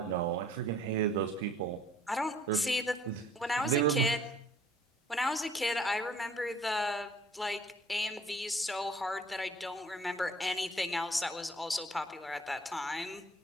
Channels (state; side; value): normal; both; correlation 0.56